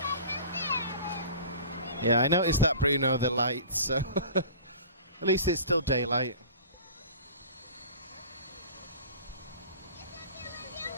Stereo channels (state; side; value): inverted; both; correlation -0.41